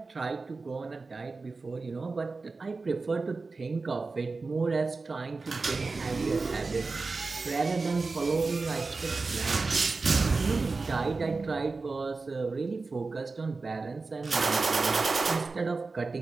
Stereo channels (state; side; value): quieter; left; 3.9 dB